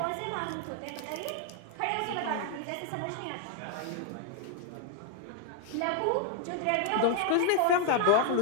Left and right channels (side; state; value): both; different; correlation 0.00